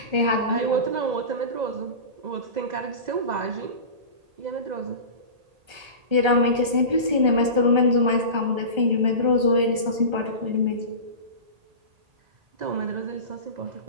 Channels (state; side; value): late; left; 1.3 ms